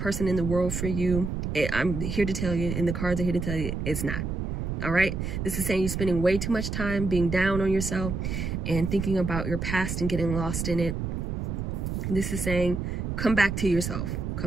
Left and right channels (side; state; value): right; noise; rumble, 3 dB below the sound